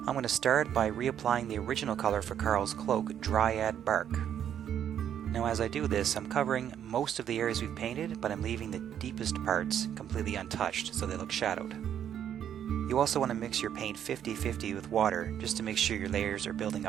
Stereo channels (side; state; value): left; quieter; 9.6 dB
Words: I'm going to start by reapplying the original color for Karl's cloak, Dryad Bark. Now as I do this, I'm covering most of the areas we've painted, but I'm leaving the deepest parts completely untouched so they look shadowed. You also want to mix your paint 50-50 with water just to make sure your layers are building